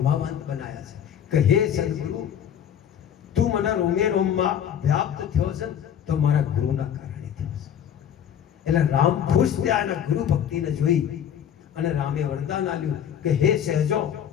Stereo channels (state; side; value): quieter; right; 9.2 dB